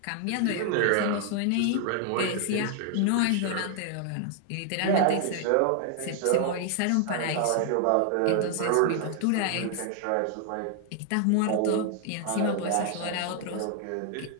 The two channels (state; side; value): different; both; correlation 0.00